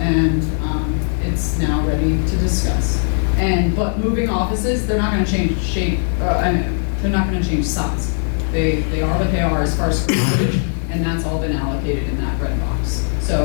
it's now ready to discuss. But moving offices, they're not gonna change shape, they're not gonna change size. They are what they are as far as square footage, and that's all been allocated in that red box.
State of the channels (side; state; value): right; silent; 67 dB below the other